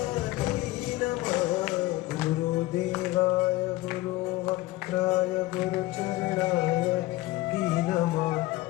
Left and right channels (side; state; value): right; quieter; 18.1 dB